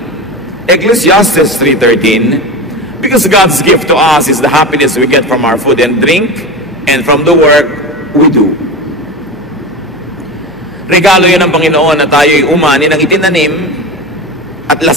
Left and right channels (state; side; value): noise; left; hum, 28 dB below the sound